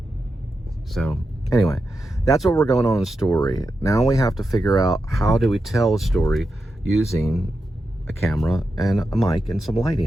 So anyway, that's what we're going on in the story. Now we have to figure out, how do we tell a story using a camera and a mic and some lighting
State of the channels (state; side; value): normal; both; correlation 0.88